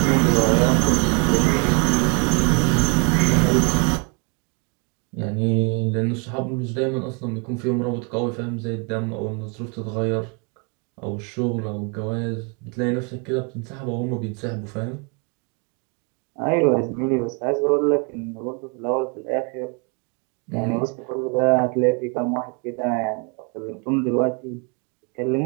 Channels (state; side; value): quieter; left; 34.5 dB